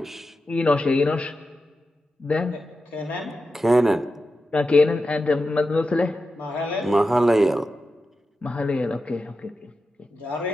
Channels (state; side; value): normal; both; correlation 0.90